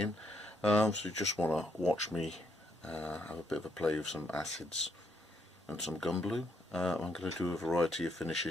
So you just want to watch me have a bit of a play with some acids and some gun blue. I'm going to do a variety of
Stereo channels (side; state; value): both; normal; correlation 0.75